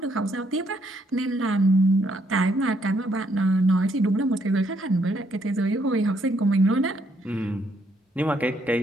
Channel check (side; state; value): both; normal; correlation 0.72